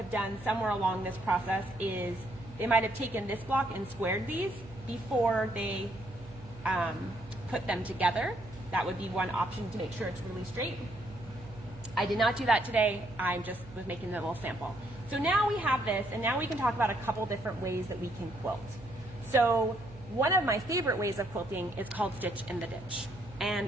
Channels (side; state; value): right; noise; hum, 18 dB below the sound